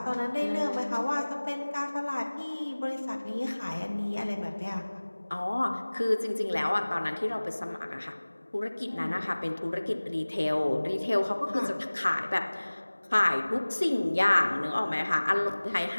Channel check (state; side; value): inverted; both; correlation -1.00